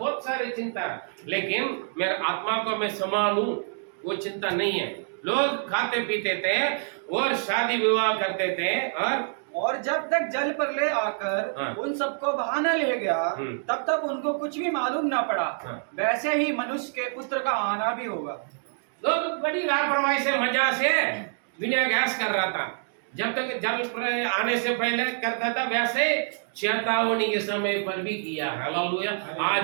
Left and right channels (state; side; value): silent; left; digital silence